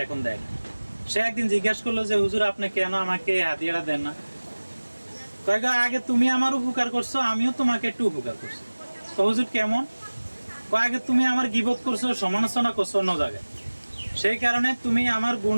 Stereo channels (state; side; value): inverted; both; correlation -1.00